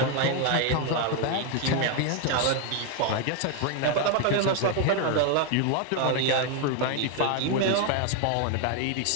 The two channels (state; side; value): different; both; correlation 0.01